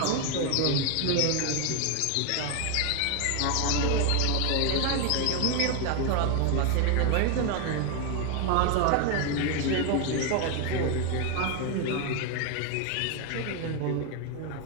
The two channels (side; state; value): both; different; correlation 0.01